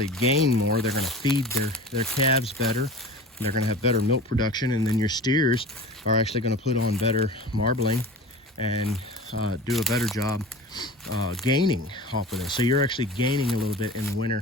gain more. They're going to feed their calves better. They're going to have better milk production, and then your steers are actually going to put on better marbling and do a better job gaining off of this. So you're actually gaining a little bit in the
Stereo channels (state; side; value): normal; both; correlation 0.36